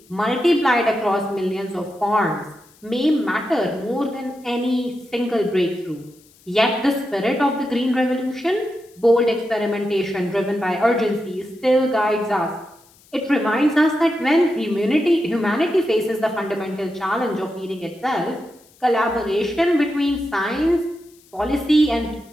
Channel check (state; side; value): noise; left; hiss, 29 dB below the sound